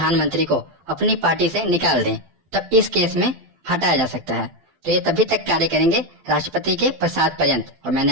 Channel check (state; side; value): late; left; 12 ms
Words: को अपनी पार्टी से निकाल दें, तब इस केस में हटाया जा सकता है। तो ये तभी तक कार्य करेंगे राष्ट्रपति के प्रसाद पर्यंत। और